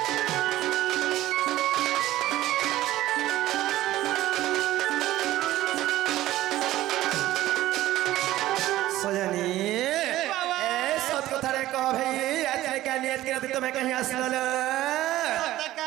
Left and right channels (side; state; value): left; quieter; 15.2 dB